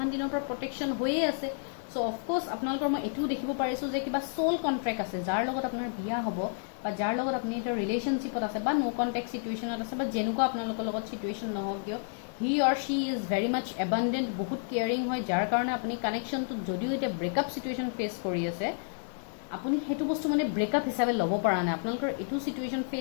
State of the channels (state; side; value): silent; right; digital silence